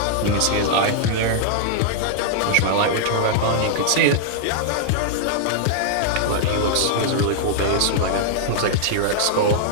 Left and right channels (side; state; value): both; different; correlation -0.01